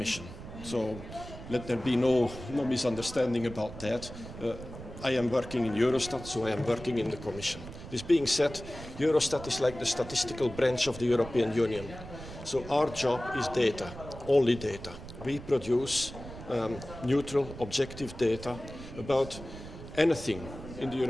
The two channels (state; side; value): noise; right; rumble, 13 dB below the sound